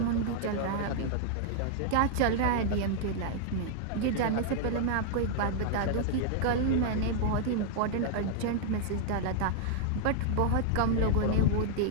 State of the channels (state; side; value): different; both; correlation -0.01